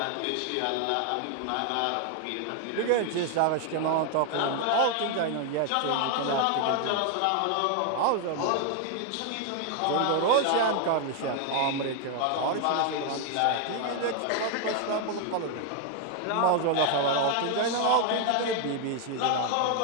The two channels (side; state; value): both; different; correlation 0.00